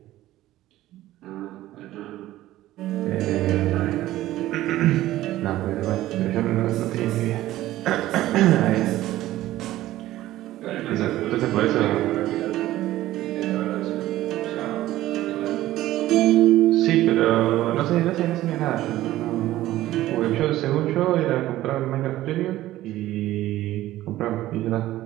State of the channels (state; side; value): quieter; left; 15.2 dB